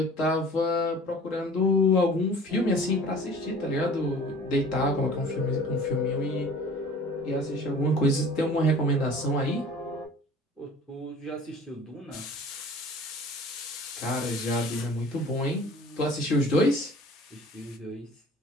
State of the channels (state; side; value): normal; both; correlation 0.46